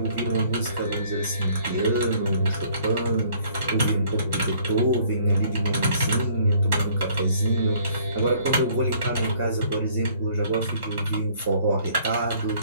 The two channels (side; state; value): both; inverted; correlation -0.60